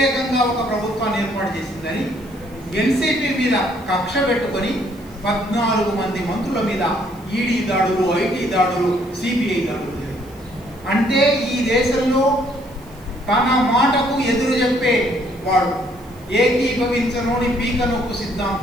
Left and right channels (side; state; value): right; noise; hiss, 27 dB below the sound